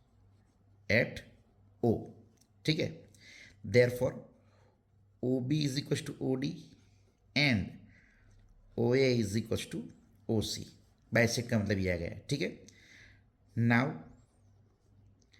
एट O, ठीक है। Therefore OB is equal to OD and OA is equal to OC, bisect का मतलब ये आ गया, ठीक है। नाउ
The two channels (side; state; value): both; identical; correlation 1.00